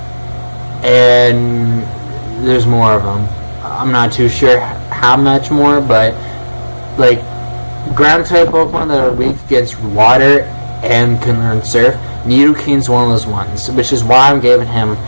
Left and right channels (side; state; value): both; inverted; correlation -1.00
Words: and there's more of them. I'm not too sure how much more, but like ground-type Pokemon that are weak against water and can learn Surf, Nidoking's one of those ones, which is why I'm giving him